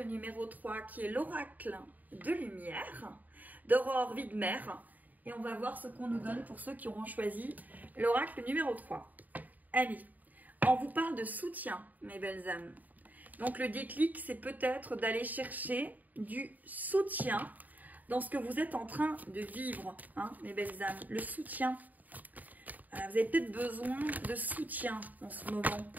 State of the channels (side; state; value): left; late; 0.081 ms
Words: numéro 3, qui est l'oracle de lumière, d'Aurore Widmer. Et on va voir ce qu'on nous donne pour ceux qui auront choisi l'oracle numéro 3. Allez, on vous parle de soutien, mes belles âmes. Donc le déclic, c'est peut-être d'aller chercher du soutien dans ce que vous êtes en train de vivre, hein, mes belles âmes. Le soutien. Vous avez peut-être besoin de soutien en ce moment,